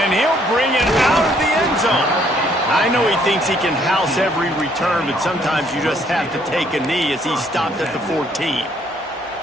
he'll bring it out of the end zone. I know he thinks he can house every return, but sometimes you just have to take a knee as he stopped at the 14.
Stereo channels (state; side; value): normal; both; correlation 0.66